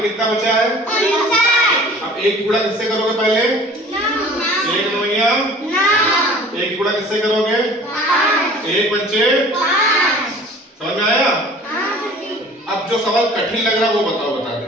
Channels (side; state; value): both; normal; correlation 0.47